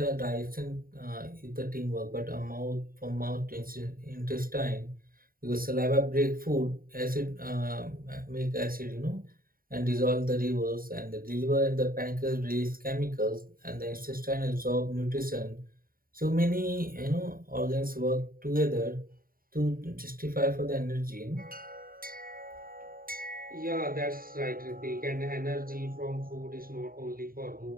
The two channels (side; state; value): left; late; 0.42 ms